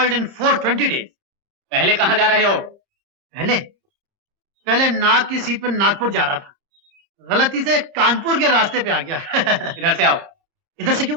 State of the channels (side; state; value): both; normal; correlation 0.02